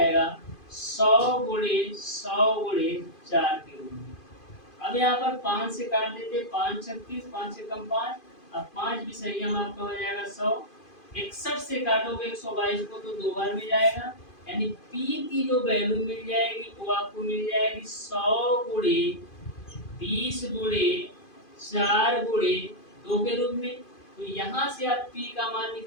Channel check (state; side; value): late; right; 2.5 ms